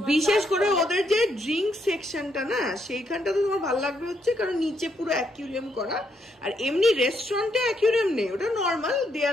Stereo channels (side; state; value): both; normal; correlation 0.76